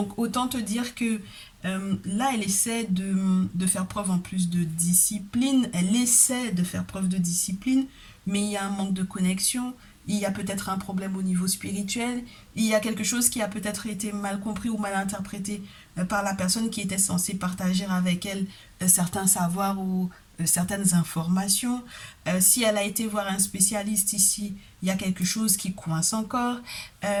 autant te dire que là, elle essaie de faire preuve en plus de discipline, elle essaie de faire preuve de discipline, mais il y a un manque de connexion, il y a peut-être un problème au niveau spirituel, il y a quelque chose qui a peut-être été mal compris ou mal interprété par la personne qui était censée partager avec elle certains savoirs ou certaines informations. Si elle a été voir un spécialiste ici, il y a quelque chose qui coince encore.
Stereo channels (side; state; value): both; identical; correlation 1.00